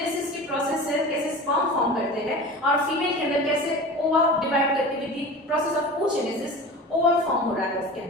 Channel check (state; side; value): normal; both; correlation 0.34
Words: की प्रोसेस से कैसे स्पर्म फॉर्म करते हैं, और फीमेल के अंदर कैसे ओवा डिवाइड करके with the process of oogenesis ovum form हो रहा है उसके